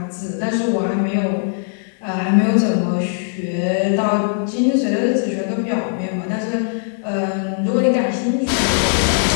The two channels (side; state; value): right; silent; 66 dB below the other